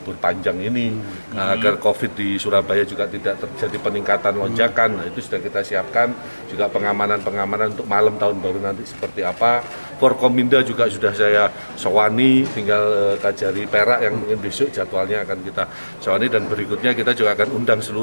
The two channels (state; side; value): inverted; both; correlation -1.00